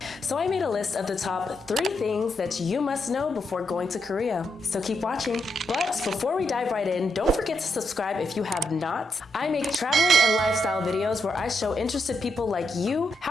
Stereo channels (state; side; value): normal; both; correlation 0.81